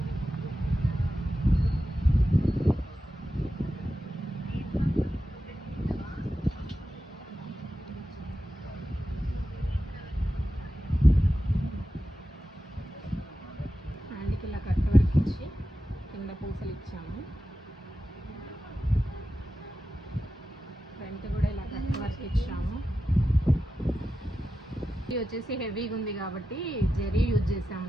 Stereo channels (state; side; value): normal; both; correlation 0.91